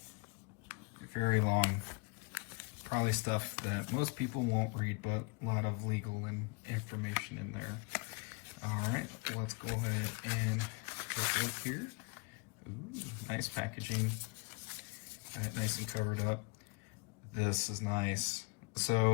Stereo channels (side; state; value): right; quieter; 28.6 dB